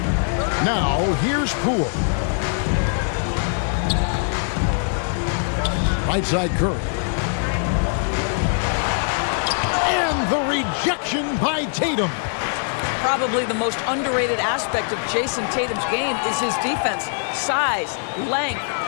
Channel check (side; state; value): right; silent; 64 dB below the other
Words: Now, here's Poole. Right side Curry. And the rejection by Tatum. Probably the most underrated aspect of Jason Tatum's game is his defense. Size, length,